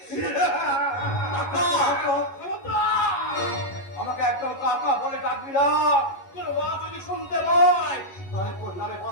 আমাকে একদম কাকা বলে ডাকবি না। তোর মা যদি শুনতে পায় তাহলে তোর নামে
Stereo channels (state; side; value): late; right; 11 ms